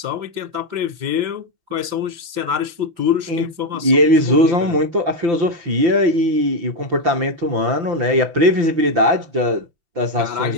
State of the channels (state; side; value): late; left; 5.8 ms